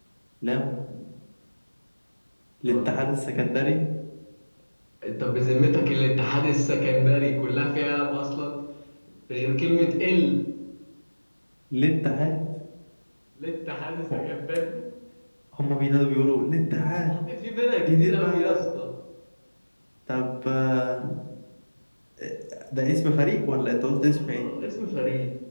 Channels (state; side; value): inverted; both; correlation -1.00